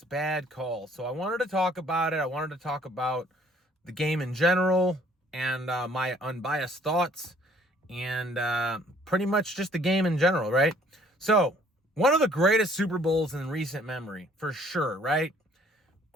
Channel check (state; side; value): normal; both; correlation 0.59